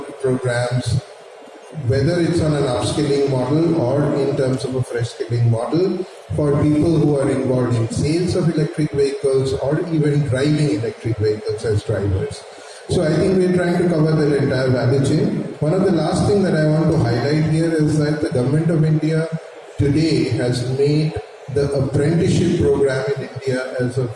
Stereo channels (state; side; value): identical; both; correlation 1.00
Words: programs, whether it's on an upskilling model or in terms of a fresh skilling model for people who are involved in sales of electric vehicles or even driving electric vehicles as drivers. So I think we're trying to cover that entire value chain. One of the last things that I want to highlight here is that the Government of India today has made the apprenticeship program in India as a